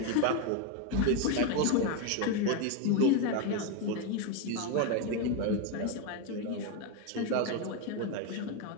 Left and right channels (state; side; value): different; both; correlation 0.02